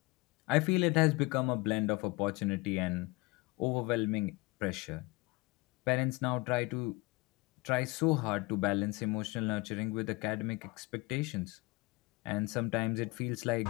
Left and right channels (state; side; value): quieter; right; 24.2 dB